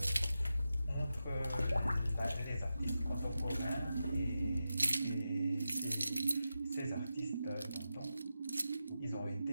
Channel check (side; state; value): both; inverted; correlation -0.90